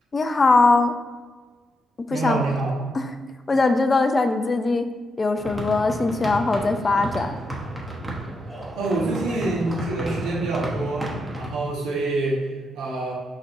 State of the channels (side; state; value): both; normal; correlation 0.84